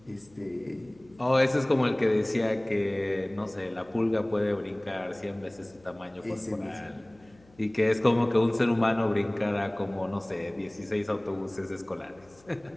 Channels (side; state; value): left; noise; hum, 29 dB below the sound